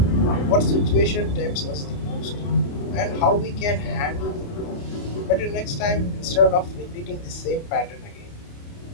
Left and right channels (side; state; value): right; late; 29 ms